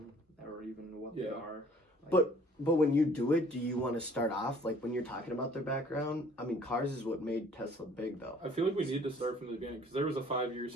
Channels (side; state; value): both; normal; correlation 0.55